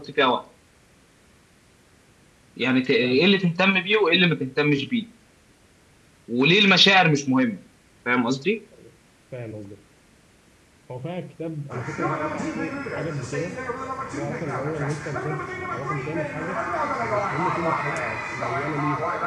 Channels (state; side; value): identical; both; correlation 1.00